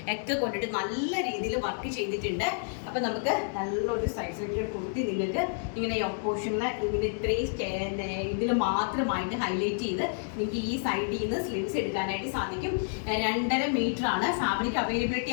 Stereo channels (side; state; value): right; silent; digital silence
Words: ഒക്കെ കൊണ്ടിട്ട് നല്ല രീതിയിൽ വർക്ക് ചെയ്തിട്ടുണ്ട്. അപ്പം നമുക്ക് നല്ലൊരു സൈസിലേക്ക് കൊടുത്തി നിങ്ങൾക്ക് ഇങ്ങനെ പോർഷനിൽ ഇങ്ങനെ ഇത്രയും ഇതിൽ മാത്രമായിട്ട് ഹൈലൈറ്റ് ചെയ്ത് നിങ്ങൾക്ക് ഈ സൈഡിൽ നിന്ന് സ്ലിറ്റ്സ് എടുക്കാനായിട്ട് സാധിക്കും. 2.5 മീറ്ററാണ് ഫാബ്രിക്